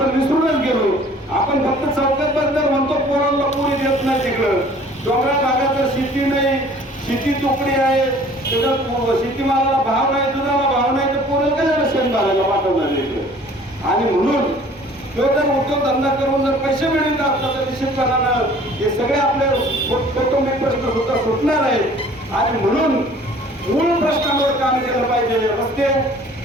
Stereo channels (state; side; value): normal; both; correlation 0.51